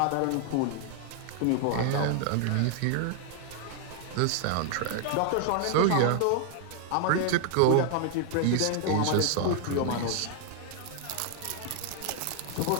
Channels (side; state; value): both; different; correlation 0.00